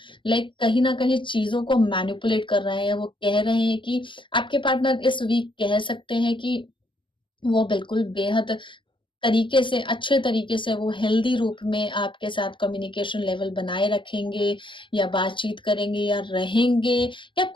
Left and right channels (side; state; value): right; late; 0.24 ms